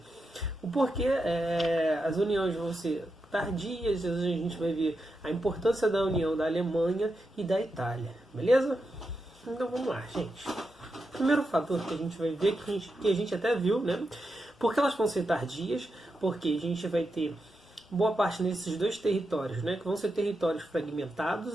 o porquê as uniões vão ser tardias, a gente vai ver a importância da união da Alemanha e da Itália, beleza? Então vamos lá, gente. O primeiro fator que a gente vai ver, que a gente até viu, né? Porque elas vão ser tardias, porque a gente vai ter boa parte nesses dois territórios, né? Que vão ser territórios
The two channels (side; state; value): both; normal; correlation 0.87